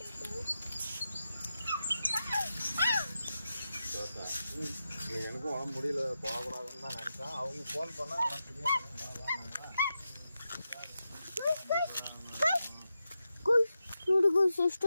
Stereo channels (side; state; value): both; inverted; correlation -0.89